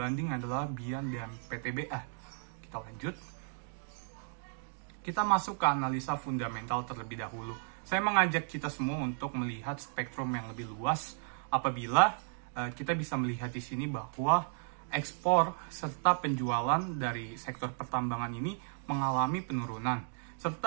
adalah BIAN dan PTBA. Kita lanjut. Kita masuk ke analisa fundamental terlebih dahulu. Saya mengajak kita semua untuk melihat spektrum yang lebih luas apabila kita bisa melihat di sini bahwa ekspor serta penjualan dari sektor pertambangan ini mengalami penurunan.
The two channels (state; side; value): silent; left; 55 dB below the other